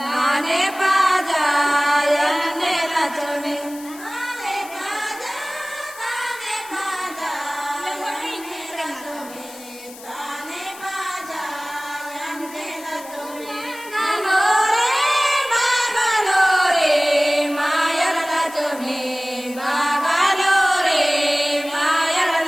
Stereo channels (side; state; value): left; noise; hiss, 17 dB below the sound